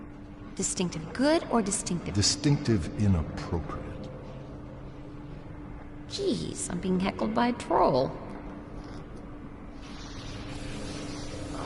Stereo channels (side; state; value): both; identical; correlation 1.00